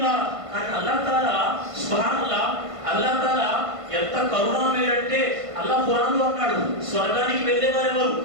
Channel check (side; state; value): left; late; 1.5 ms